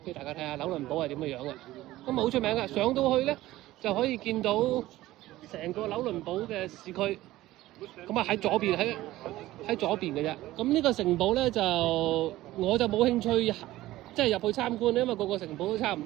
俾大家睇下紐倫堡係點嘅樣嘅。咁好出名嘅，上到去咧就可以見到成個紐倫堡嘅市區。咁啊喺左邊喺左邊嘅啫。咁呢個城堡咧就我就冇興趣即係入去參觀，因為個城堡都差唔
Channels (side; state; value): left; quieter; 16.4 dB